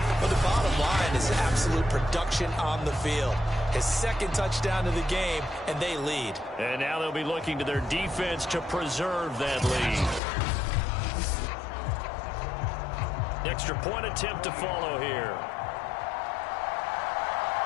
But the bottom line is absolute production on the field. His second touchdown of the game, and they lead. And now they'll be looking to their defense to preserve that lead. Extra point attempt to follow here.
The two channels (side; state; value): right; drops out; at 10.2 s